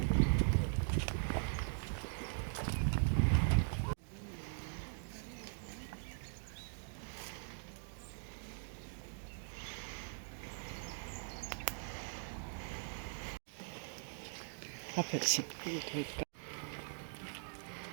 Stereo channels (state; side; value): silent; left; digital silence